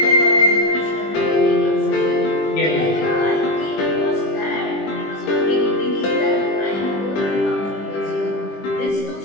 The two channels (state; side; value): late; right; 20 ms